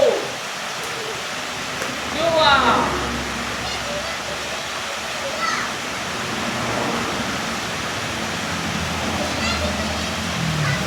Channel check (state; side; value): identical; both; correlation 1.00